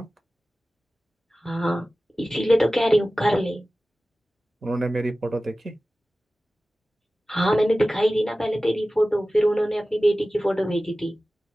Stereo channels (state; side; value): normal; both; correlation 0.96